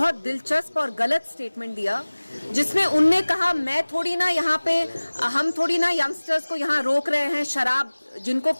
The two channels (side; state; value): both; inverted; correlation -1.00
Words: दिलचस्प और गलत स्टेटमेंट दिया जिसमें उनने कहा हम थोड़ी ना यंगस्टर्स को यहाँ रोक रहे हैं, शराब जिनको